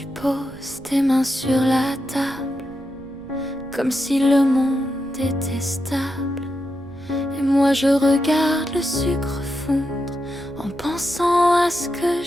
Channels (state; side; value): noise; right; rumble, 23 dB below the sound